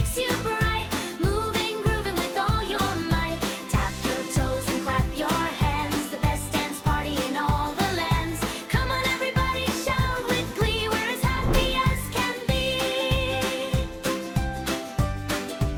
you bright. Moving, grooving with all your might. Tap your toes and clap your hands. The best dance party in all the lands. Come on everybody, shout with glee. We're as happy as can be.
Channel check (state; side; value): identical; both; correlation 1.00